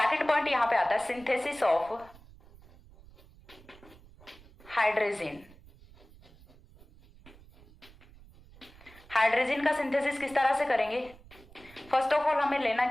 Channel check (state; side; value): noise; right; rumble, 23 dB below the sound